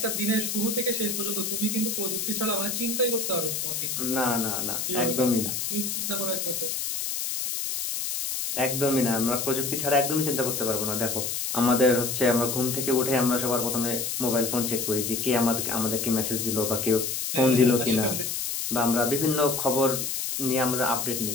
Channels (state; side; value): noise; left; hiss, 2 dB below the sound